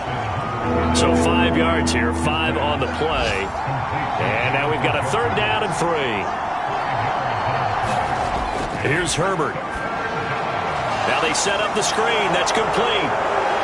So 5 yards here, 5 on the play. And now we've got a 3rd down and 3. Here's Herbert. Now they set up the screen. That's complete.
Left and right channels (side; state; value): both; identical; correlation 1.00